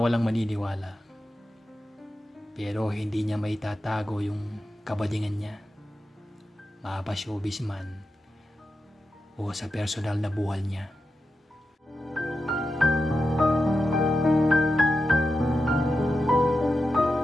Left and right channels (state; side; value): normal; both; correlation 0.89